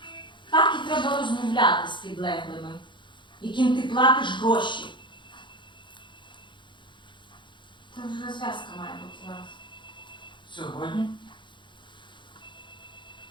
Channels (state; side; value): late; right; 0.23 ms